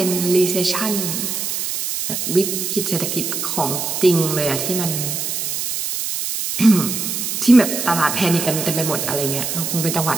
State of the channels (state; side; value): noise; right; hiss, 3 dB below the sound